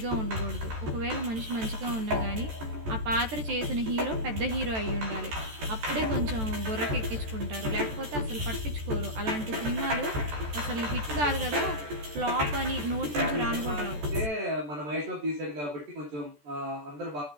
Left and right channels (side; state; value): left; late; 14 ms